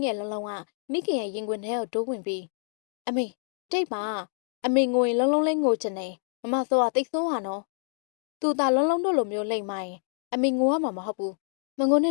ငယ်လုံးလုံးကမိခင်ရဲ့ရင်ခွင်ထဲကိုတိုးဝင်ပြီးအမေတိတ်ပါအမေငိုရင်လုံးလုံးလေးငိုချင်တယ်မမစောကတိတ်ဆိုးဟာနော်သူသာလုံးလုံးတို့လိုမျိုးလိမ့်မိုင်းအမေငိုရမှာမဟုတ်ဘူးမငိုန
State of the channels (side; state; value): right; silent; digital silence